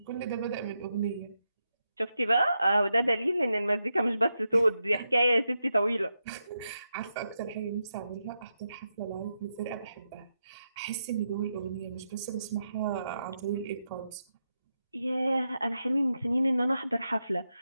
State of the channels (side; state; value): both; inverted; correlation -0.86